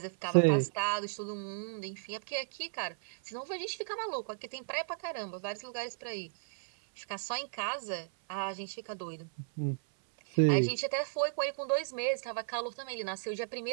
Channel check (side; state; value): left; silent; 55 dB below the other